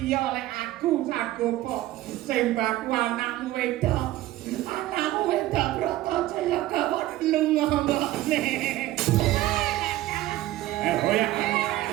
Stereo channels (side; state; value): left; quieter; 15.5 dB